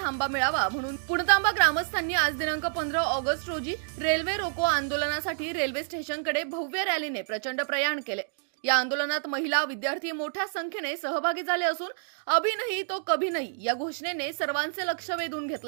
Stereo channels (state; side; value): silent; left; digital silence